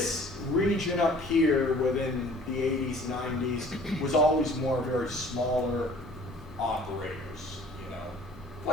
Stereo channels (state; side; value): normal; both; correlation 0.51